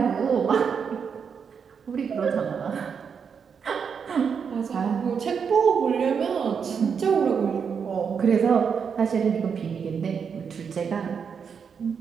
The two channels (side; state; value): left; quieter; 6.5 dB